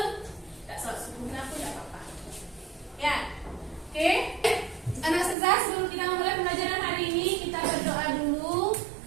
tidak salat subuhnya pun tidak apa-apa. Ya, oke. Anak Sezar, sebelum kita memulai pembelajaran hari ini, kita berdoa dulu.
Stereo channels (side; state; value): left; drops out; at 5.4 s